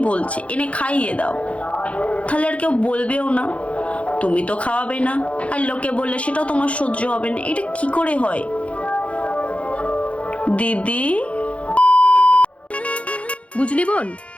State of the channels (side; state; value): right; late; 0.063 ms